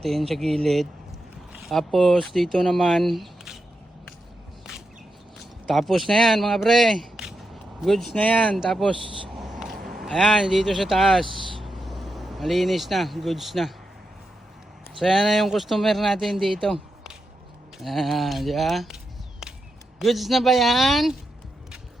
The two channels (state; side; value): normal; both; correlation 0.87